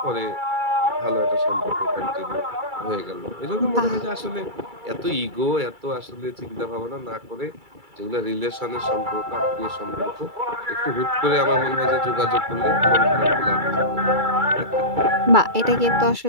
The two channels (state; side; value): late; left; 2.3 ms